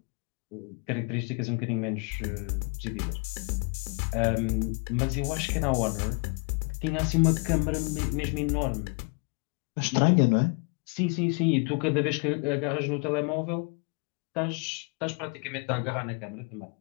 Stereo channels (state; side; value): quieter; right; 32.9 dB